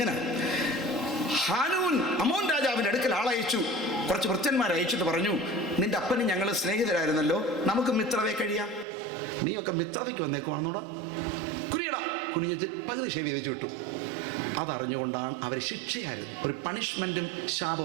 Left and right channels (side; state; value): left; drops out; at 8.8 s